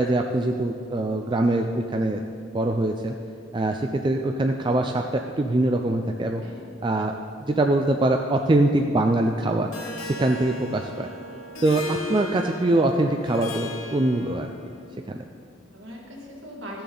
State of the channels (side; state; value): both; normal; correlation 0.69